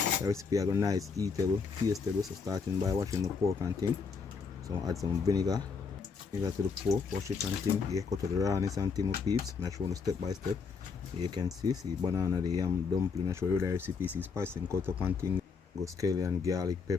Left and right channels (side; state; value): right; quieter; 5.3 dB